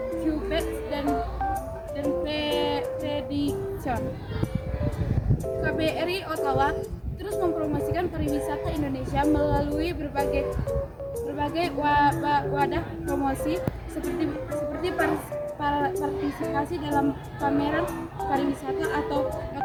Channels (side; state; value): both; identical; correlation 1.00